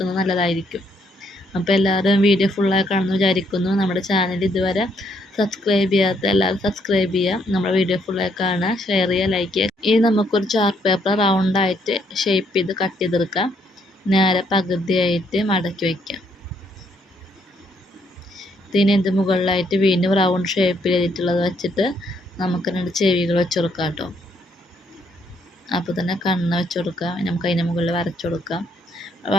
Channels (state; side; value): normal; both; correlation 0.72